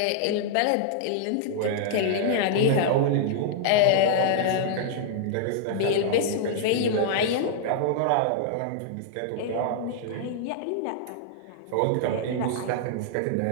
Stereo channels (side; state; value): both; different; correlation -0.01